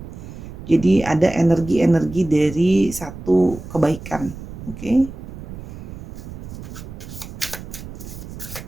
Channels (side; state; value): right; noise; rumble, 12 dB below the sound